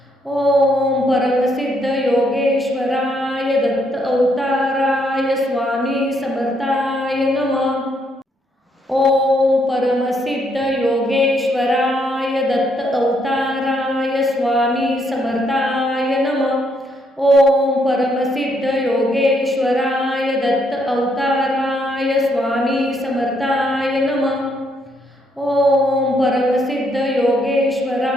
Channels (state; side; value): normal; both; correlation 0.73